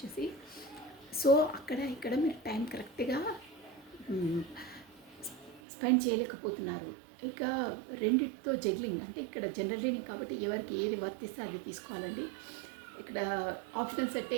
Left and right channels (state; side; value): drops out; left; at 5.6 s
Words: సో అక్కడ ఇక్కడ మీరు టైం కరెక్ట్గా స్పెండ్ చేయలేకపోతున్నారు. ఇక రెండిటితో జగ్లింగ్ అంటే ఇక్కడ జనరల్ రీడింగ్ కాబట్టి ఎవరికి ఏది వర్తిస్తే అది తీసుకోవాలండి. ఇక్కడ ఆప్షనల్స్ అంటే